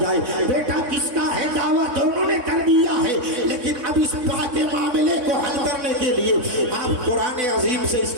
جائے؟ بیٹا کس کا ہے؟ دعویٰ دونوں نے کر دیا ہے, لیکن اب اس بات کے معاملے کو حل کرنے کے لیے آپ قرآن عظیم سے اس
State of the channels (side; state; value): left; late; 3.6 ms